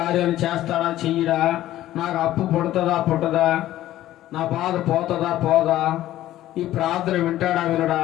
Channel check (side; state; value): right; quieter; 14.1 dB